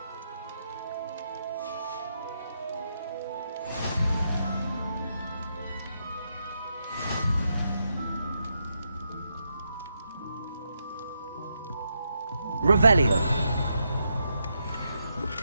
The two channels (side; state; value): both; inverted; correlation -0.82